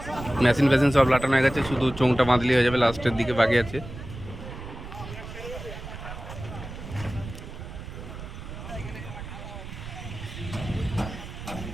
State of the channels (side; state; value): right; noise; rumble, 11 dB below the sound